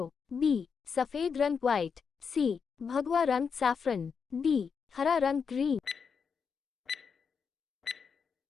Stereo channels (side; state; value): right; quieter; 6.1 dB